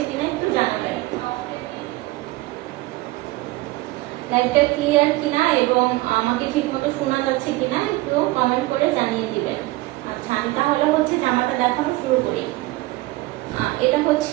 কিনা একটু জানাবেন। লাইভটা ক্লিয়ার কিনা এবং আমাকে ঠিকমতো শোনা যাচ্ছে কিনা একটু কমেন্ট করে জানিয়ে দিবেন। আচ্ছা, আমি তাহলে হচ্ছে জামাটা দেখানো শুরু করি। এটা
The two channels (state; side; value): quieter; left; 19.7 dB